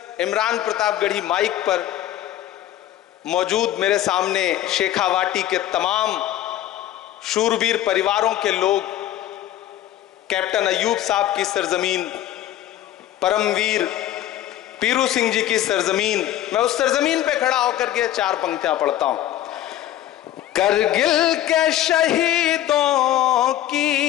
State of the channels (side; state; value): right; quieter; 12.8 dB